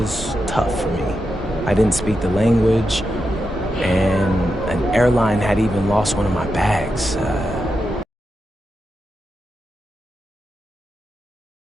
tough for me. I didn't speak the language, and an airline had even lost one of my bags.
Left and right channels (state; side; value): normal; both; correlation 0.87